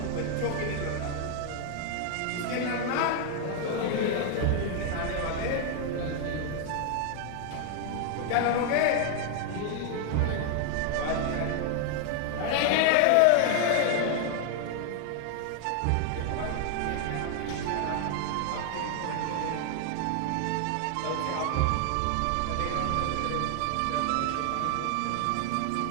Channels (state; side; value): different; both; correlation 0.00